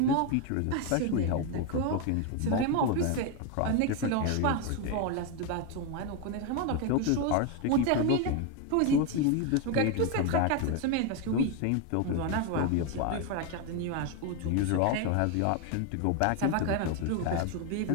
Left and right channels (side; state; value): both; different; correlation 0.02